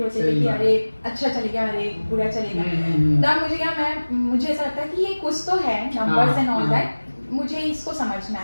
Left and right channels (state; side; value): inverted; both; correlation -1.00